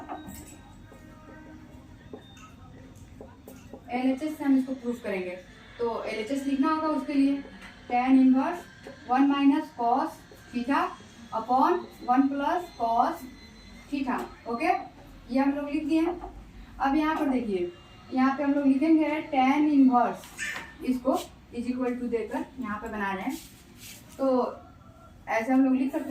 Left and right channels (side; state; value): both; identical; correlation 1.00